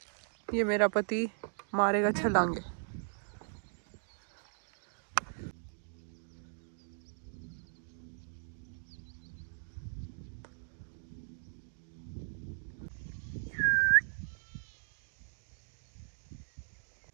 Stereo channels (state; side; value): silent; left; digital silence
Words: ये मेरा पति मारेगा छलांगे।